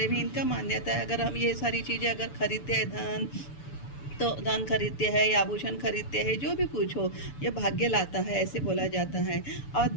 में इनका मान्यता है अगर हम ये सारी चीज़ें अगर खरीदते हैं, धन खरीदते हैं या आभूषण खरीदते हैं, जो भी कुछ हो, ये भाग्य लाता है, ऐसे बोला जाता है। और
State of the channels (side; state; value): right; late; 6.9 ms